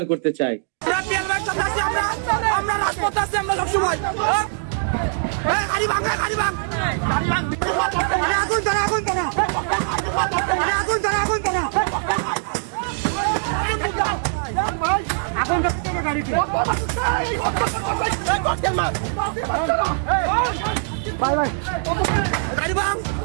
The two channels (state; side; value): silent; left; digital silence